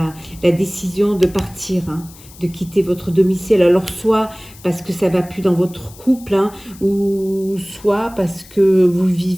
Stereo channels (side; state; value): left; noise; hiss, 22 dB below the sound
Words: la décision de partir, de quitter votre domicile. Alors soit parce que ça ne va plus dans votre couple, ou soit parce que vous